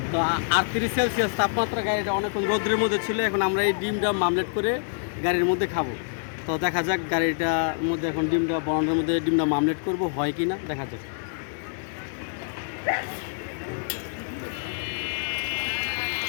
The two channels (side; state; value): right; silent; digital silence